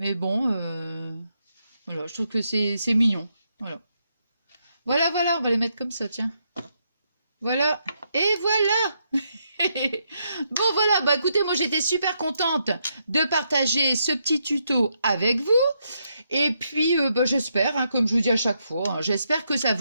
bon, voilà. Je trouve que c'est mignon. Voilà. Voilà, voilà. On va les mettre comme ça, tiens. Voilà. Et voilà. Bon, voilà. Bah, écoutez, moi, j'étais super contente de partager ce petit tuto avec vous. Et puis, bah, j'espère, hein, comme je vous dis à chaque fois, hein, j'espère que ça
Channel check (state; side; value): inverted; both; correlation -0.79